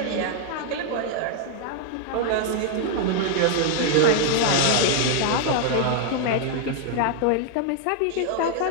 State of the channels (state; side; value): different; both; correlation 0.00